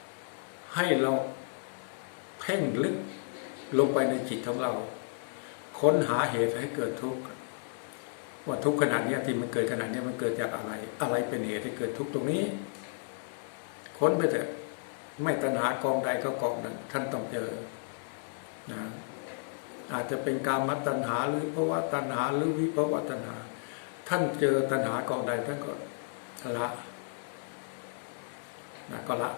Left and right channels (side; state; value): right; silent; 56 dB below the other